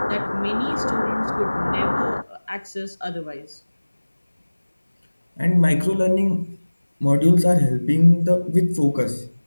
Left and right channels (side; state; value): both; inverted; correlation -1.00